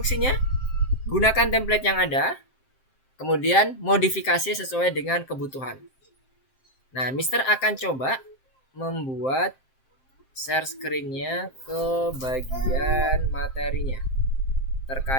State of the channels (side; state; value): right; late; 7.6 ms